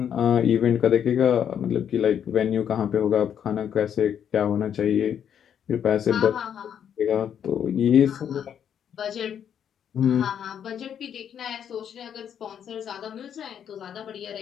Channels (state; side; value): quieter; right; 8.8 dB